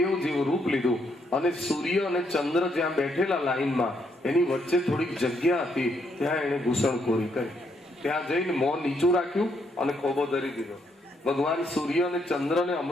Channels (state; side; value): normal; both; correlation 0.74